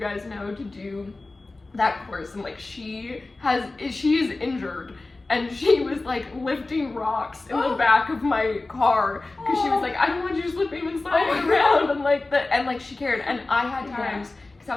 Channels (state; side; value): quieter; right; 3.2 dB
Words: know, to do that course. And, like, she is injured. and she was like lifting rocks in the back of my car because she was like, I don't want you just lifting and sliding around, and like she cared. And I had times because